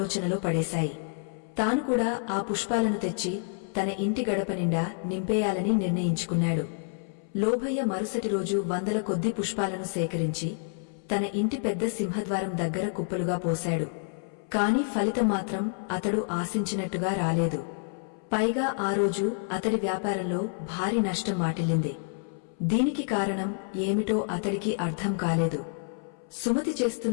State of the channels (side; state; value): right; silent; 59 dB below the other